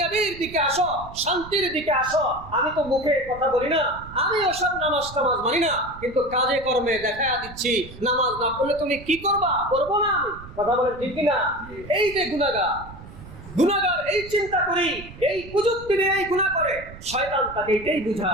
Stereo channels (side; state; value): right; noise; rumble, 16 dB below the sound